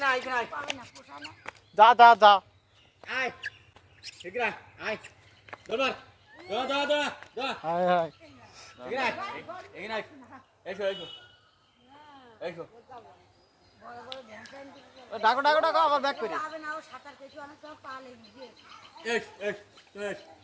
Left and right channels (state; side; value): identical; both; correlation 1.00